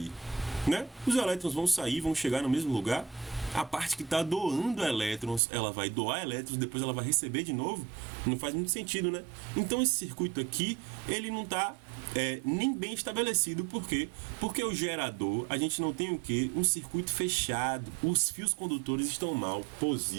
Né? Os elétrons vão sair, vão chegar no mesmo lugar? A parte que está doando elétrons, ela vai doar elétrons, depois ela vai receber de novo? Não faz muito sentido, né? Então esse circuito aqui, ele não está nem bem estabelecido. Por quê? Porque o gerador, a gente não tem o quê? Um circuito fechado. Os fios condutores estão mal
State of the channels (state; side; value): drops out; left; at 5.4 s